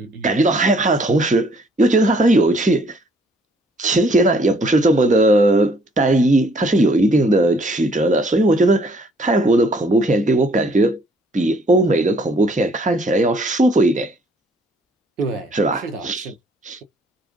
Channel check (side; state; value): both; normal; correlation 0.62